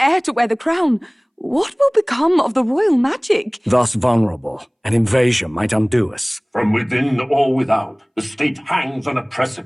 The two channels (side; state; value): both; identical; correlation 1.00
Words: to wear the crown, what will become of the royal magic? Thus vulnerable, an invasion might undo us. From within or without, the state hangs on a